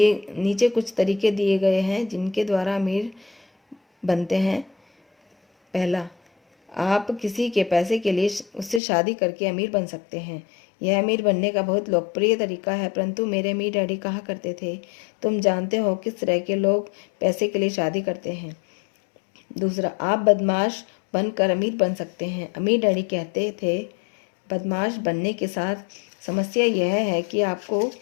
कुछ तरीके दिए गए हैं जिनके द्वारा अमीर बनते हैं। पहला, आप किसी के पैसे के लिए उससे शादी करके अमीर बन सकते हैं। यह अमीर बनने का बहुत लोकप्रिय तरीका है, परंतु मेरे अमीर डैडी कहा करते थे, तुम जानते हो किस तरह के लोग पैसे के लिए शादी करते हैं। दूसरा, आप बदमाश बनकर अमीर बन सकते हैं। अमीर डैडी कहते थे, बदमाश बनने के साथ समस्या यह है कि आपको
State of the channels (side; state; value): right; drops out; at 8.8 s